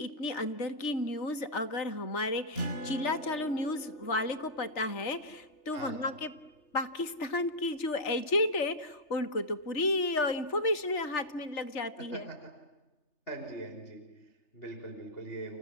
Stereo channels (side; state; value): right; late; 3.3 ms